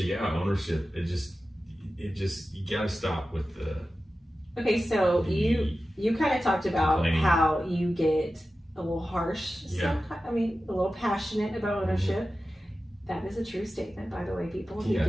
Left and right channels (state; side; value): normal; both; correlation 0.94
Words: ownership. It just you gotta stop with the. Okay, so you kind of talked about how you get a little harsh, a little passionate about ownership. That is a true statement, by the way, people. He